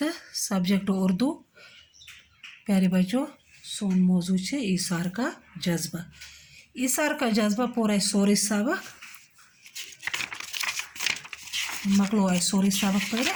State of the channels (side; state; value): both; identical; correlation 1.00